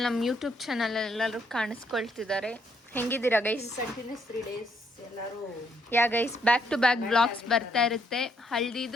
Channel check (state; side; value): normal; both; correlation 0.72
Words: ನಮ್ಮ ಯೂಟ್ಯೂಬ್ ಚಾನಲ್ ಎಲ್ಲರೂ ಕಾಣಿಸ್ಕೊಳ್ತಿದ್ದಾರೆ. ಹೆಂಗಿದ್ದೀರಾ ಗೈಸ್? ಕಂಟಿನ್ಯೂಸ್ 3 days ಎಲ್ಲರೂ ಯಾ guys, back to back blogs ಬರ್ತಾ ಇರುತ್ತೆ.